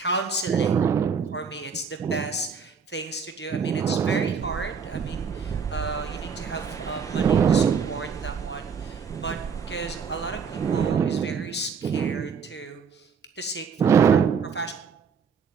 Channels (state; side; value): quieter; left; 6.1 dB